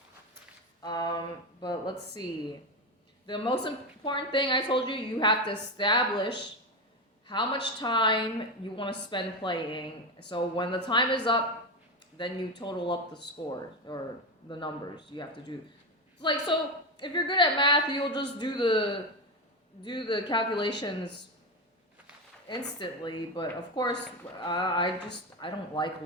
But let's see. The most important thing I told you, you have to establish how much time you want to spend playing. So when the time is up, then you total up the score or the numbers you have to do. Like, so if you're good at math, you'll just do the calculations instantly. But of course, I don't like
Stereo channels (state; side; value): normal; both; correlation 0.15